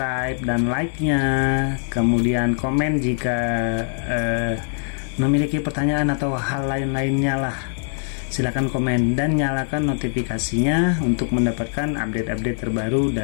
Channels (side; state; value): right; silent; digital silence